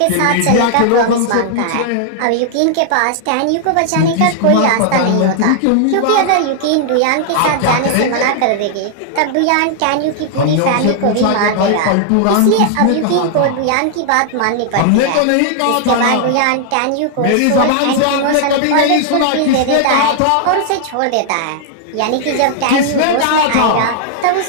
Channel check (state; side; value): different; both; correlation -0.01